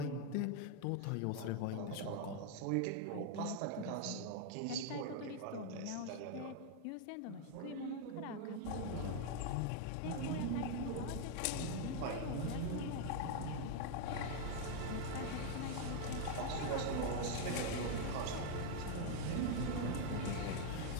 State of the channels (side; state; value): both; different; correlation 0.00